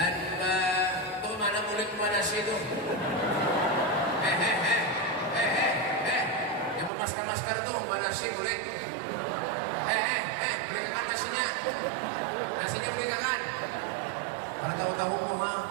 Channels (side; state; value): left; drops out; at 6.9 s